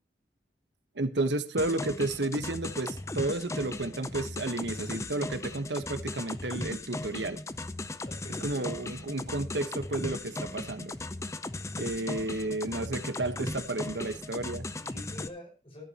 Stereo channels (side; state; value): both; normal; correlation 0.37